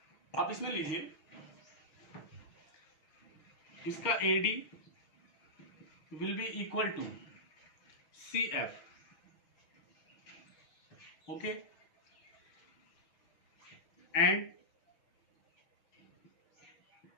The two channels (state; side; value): late; right; 6.4 ms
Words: आप इसमें लीजिए, इसका AD will be equal to CF, okay, and